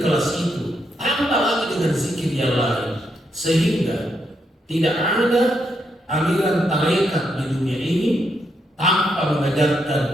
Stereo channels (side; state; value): both; normal; correlation 0.79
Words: itu, tambah lagi dengan zikir yang lain, sehingga tidak ada aliran tarekat di dunia ini tanpa mengajarkan